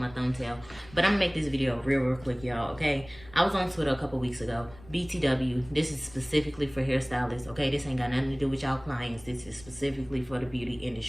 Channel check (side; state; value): left; noise; rumble, 21 dB below the sound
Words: thumbtail. But I'm gonna make this video real quick, y'all, okay? I was on Twitter a couple weeks ago. BTW, this is specifically for hairstylists, okay? This ain't got nothing to do with y'all clients. This is specifically for the beauty